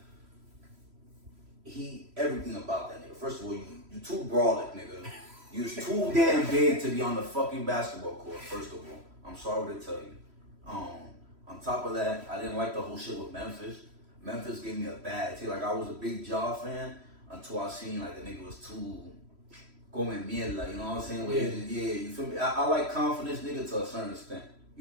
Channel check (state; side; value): late; left; 3.1 ms